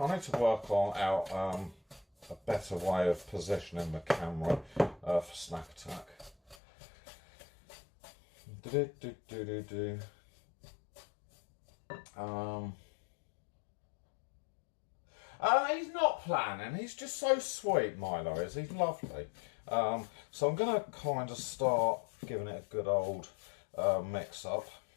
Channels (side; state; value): right; drops out; at 6.6 s